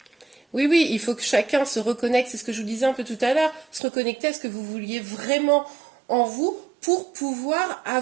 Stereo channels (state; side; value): drops out; left; at 3.8 s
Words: Oui, oui, il faut que chacun se reconnecte, c'est ce que je vous disais un peu tout à l'heure, se reconnecter à ce que vous vouliez vraiment en vous pour pouvoir